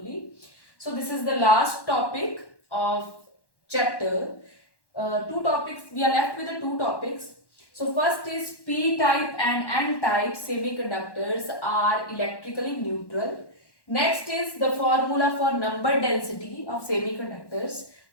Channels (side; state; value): right; late; 1.1 ms